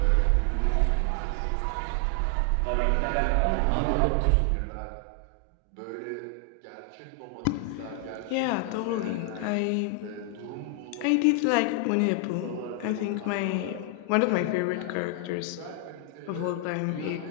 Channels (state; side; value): different; both; correlation 0.00